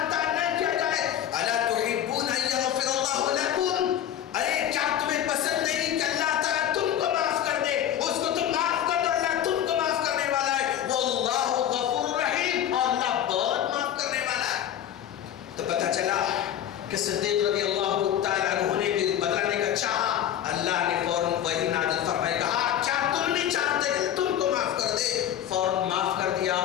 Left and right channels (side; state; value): right; quieter; 10.8 dB